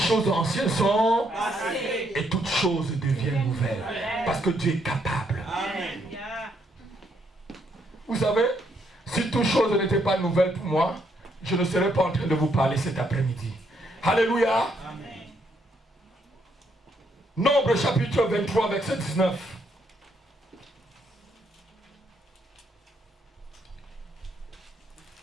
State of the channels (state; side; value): normal; both; correlation 0.74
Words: anciennes sont passées et toutes choses deviennent nouvelles. Parce que Dieu est capable. Amen. Vous savez, si toutes choses n'étaient pas nouvelles pour moi, je ne serais pas en train de vous parler cet après-midi. Alléluia. Amen. Nombre chapitre 23, verset 19.